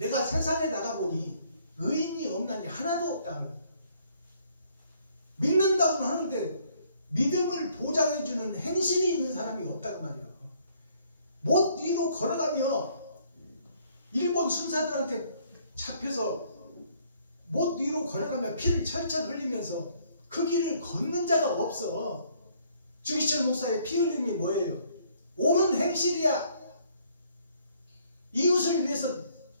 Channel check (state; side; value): inverted; both; correlation -0.64